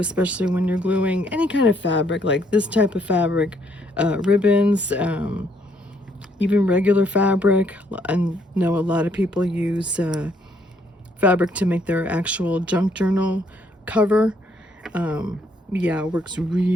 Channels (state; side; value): normal; both; correlation 0.69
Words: when you're gluing any kind of fabric, like this type of fabric, ribbons, even regular fabric. I know a lot of people use fabric to make their actual junk journal cover. Yeah, it works